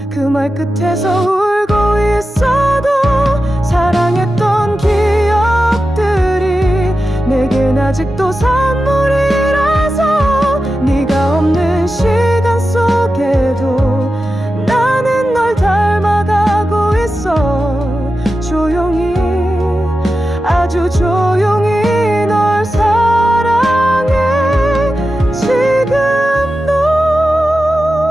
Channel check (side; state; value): both; normal; correlation 0.92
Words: 그 말 끝에서 울고 있어도 사랑했던 기억들이 내겐 아직도 선물이라서. 네가 없는 시간 속에도 나는 널 닮아가고 있어. 조용히